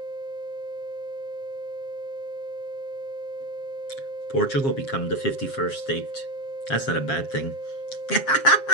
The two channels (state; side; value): late; right; 7.4 ms